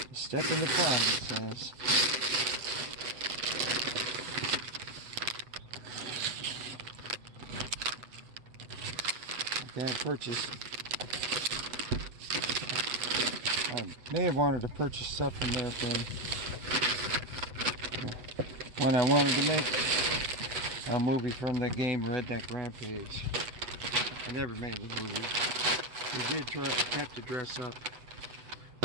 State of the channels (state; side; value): late; left; 8.0 ms